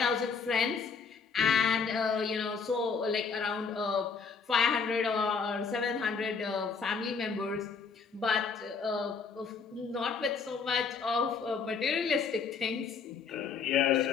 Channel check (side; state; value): right; quieter; 5.4 dB